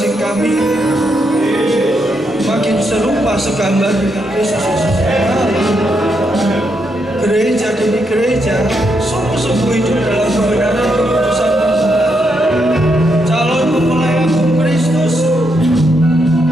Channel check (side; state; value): both; normal; correlation 0.80